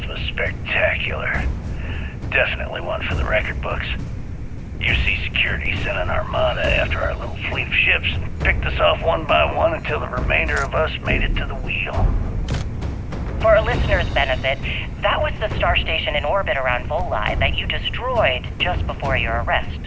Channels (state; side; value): identical; both; correlation 1.00